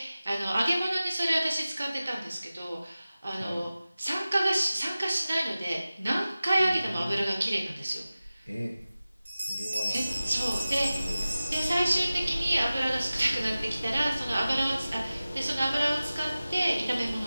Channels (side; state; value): both; inverted; correlation -0.96